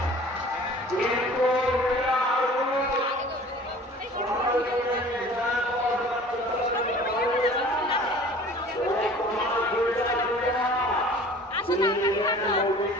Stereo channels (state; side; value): normal; both; correlation 0.46